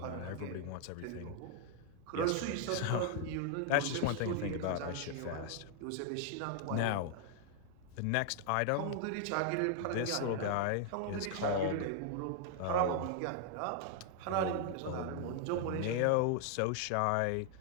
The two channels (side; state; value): both; different; correlation 0.00